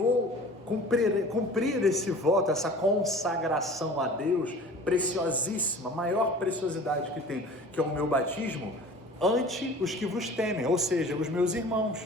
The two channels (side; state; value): both; normal; correlation 0.43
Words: cumprir esse voto, essa consagração a Deus, preciosíssima, maior preciosidade que tem, que é o meu batismo, ante os que vos temem, ou seja, os meus